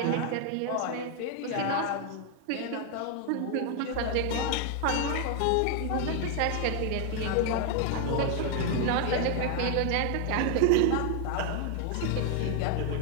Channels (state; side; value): different; both; correlation 0.00